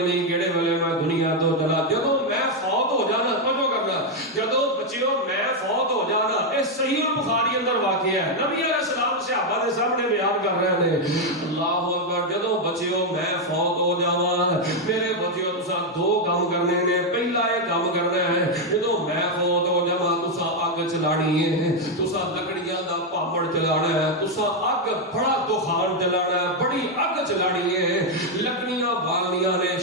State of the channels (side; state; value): both; normal; correlation 0.02